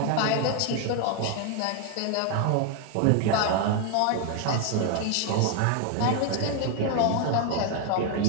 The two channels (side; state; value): both; different; correlation 0.01